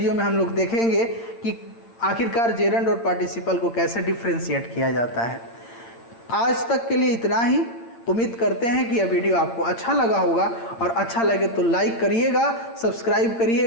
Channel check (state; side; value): late; right; 8.7 ms